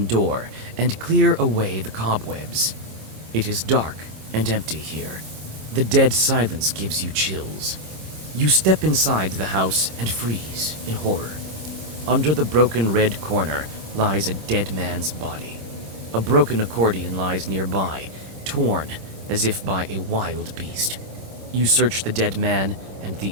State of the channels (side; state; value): left; late; 26 ms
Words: door and clear away the cobwebs. It is dark and empty here. The dead silence gives you chills. You step inside the house and freeze in horror. Under the broken red corner lies a dead man's body. A broken accordion lies nearby, torn as if by a wild beast. You search the dead man and the